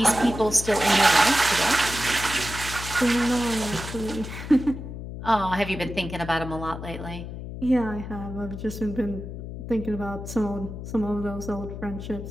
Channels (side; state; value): left; noise; hum, 9 dB below the sound